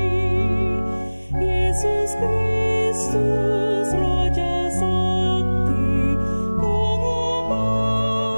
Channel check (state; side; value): inverted; both; correlation -1.00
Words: Yesus Kristus Raja Sakti,